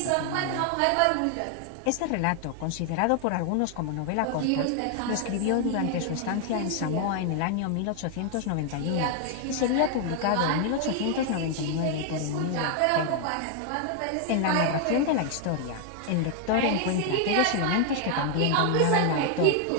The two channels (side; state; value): both; different; correlation 0.00